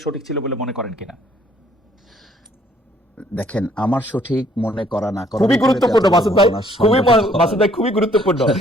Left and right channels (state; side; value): normal; both; correlation 0.63